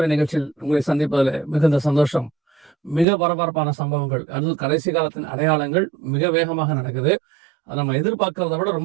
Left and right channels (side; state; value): left; drops out; at 3.1 s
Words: நிகழ்ச்சியில் உங்களை சந்திப்பதில் மிகுந்த சந்தோஷம். மிக பரபரப்பான சம்பவங்கள், அது கடைசி காலத்தின் அடையாளங்கள் மிக வேகமாக நடக்குது. அது நம்ம எதிர்பார்க்கறத விட